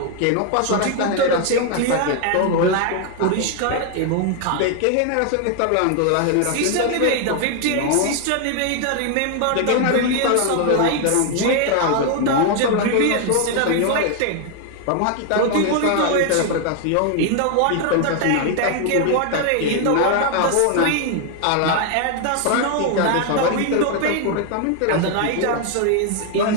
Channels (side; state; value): both; different; correlation 0.01